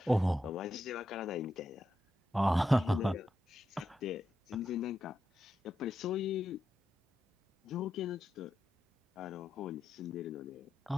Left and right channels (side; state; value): both; normal; correlation 0.86